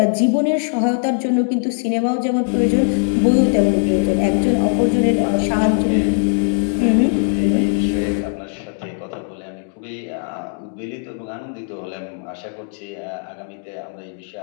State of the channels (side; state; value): right; silent; 66 dB below the other